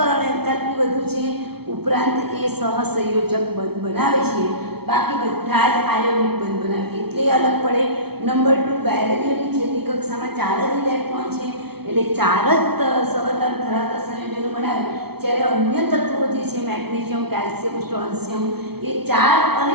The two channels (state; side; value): late; left; 0.96 ms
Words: એન્થાલ્પી વધુ છે. ઉપરાંત એ સહસંયોજક બંધ બનાવે છે. બાકી બધા જ આયોનિક બંધ બનાવે એટલે અલગ પડે. નંબર 2, બેરેલિયમની છેલ્લી કક્ષામાં 4 જ ઇલેક્ટ્રોન છે એટલે 4 જ સવર્ગાંક ધરાવતા સંયોજનો બનાવે. જ્યારે અન્ય તત્વો જે છે મેગ્નેશિયમ, કેલ્શિયમ, સ્ટ્રોન્શિયમ એ 4 અને